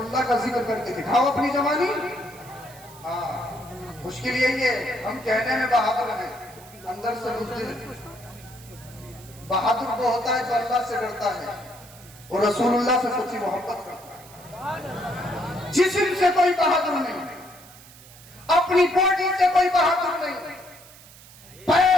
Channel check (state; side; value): noise; right; hiss, 21 dB below the sound